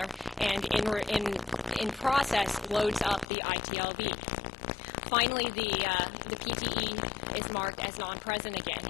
and in process loads up the ITLB. Finally, the PTE is marked as non-present again,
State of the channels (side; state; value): right; drops out; at 3.2 s